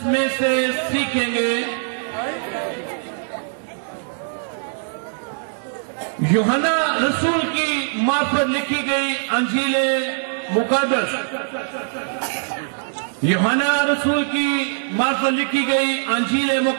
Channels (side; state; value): left; silent; 59 dB below the other